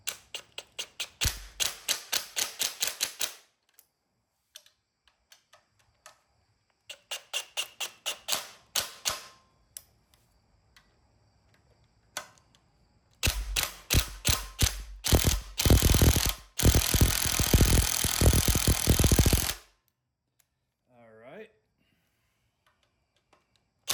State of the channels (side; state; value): both; identical; correlation 1.00